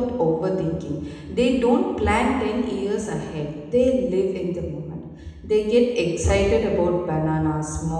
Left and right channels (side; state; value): both; identical; correlation 1.00